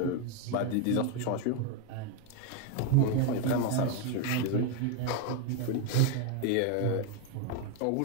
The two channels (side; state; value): both; different; correlation 0.01